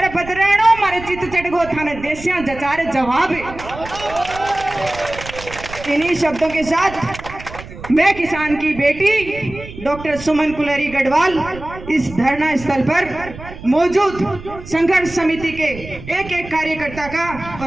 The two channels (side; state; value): right; noise; rumble, 14 dB below the sound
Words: बदराणो मारे चित चढ़गो थाने देसिया जचारे जवाब। इन्हीं शब्दों के साथ मैं किसान की बेटी डॉक्टर सुमन कुलरी गढ़वाल इस धरना स्थल पर मौजूद संघर्ष समिति के एक एक कार्यकर्ता का